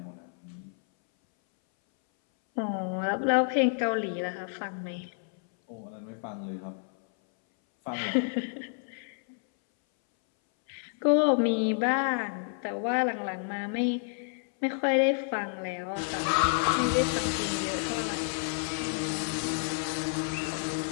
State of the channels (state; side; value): silent; right; 58 dB below the other